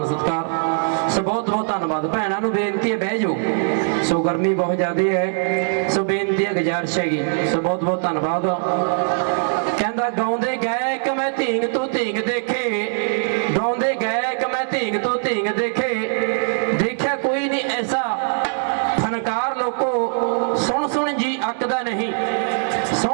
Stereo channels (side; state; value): left; silent; digital silence